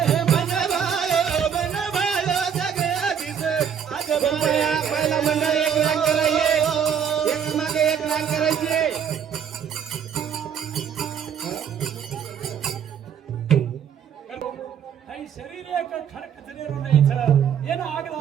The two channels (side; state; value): left; quieter; 8.1 dB